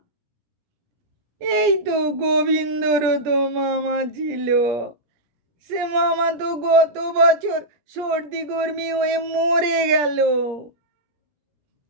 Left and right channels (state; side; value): late; left; 17 ms